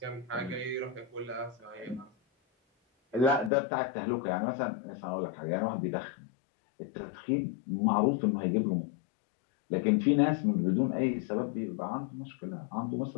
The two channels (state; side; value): drops out; right; at 3.5 s